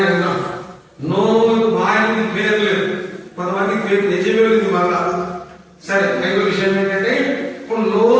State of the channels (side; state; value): both; identical; correlation 1.00